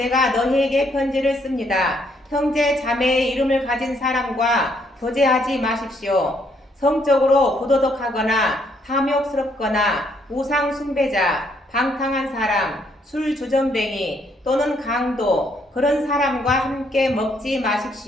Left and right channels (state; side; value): normal; both; correlation 0.71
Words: 너희에게 편지를 씁니다. 형제 자매의 이름을 가진 사람과 교제하지 마십시오. 성적으로 부도덕하거나 탐욕스럽거나 우상 숭배자, 방탕한 사람, 술 주정뱅이 또는 강도 그런 사람과 함께 먹지